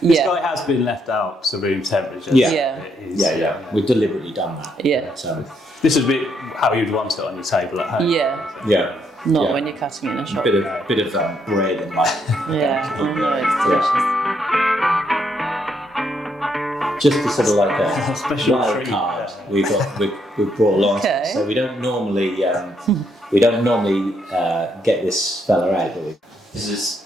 This guy has been left out to room temperature. Yeah. We've deliberately done that. Yeah. So this would be how you'd want it on your table at home. Yeah. Not when you're cutting it in a shop. Bit of bread and Yeah, I know, it's delicious. Just to sort of a special wild treat. card we've brought along. Okay. So we don't normally get this fella out, do we? This is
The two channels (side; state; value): both; normal; correlation 0.75